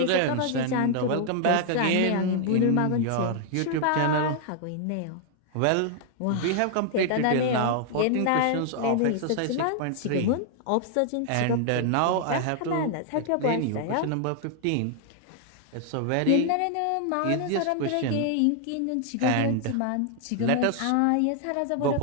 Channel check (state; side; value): different; both; correlation 0.00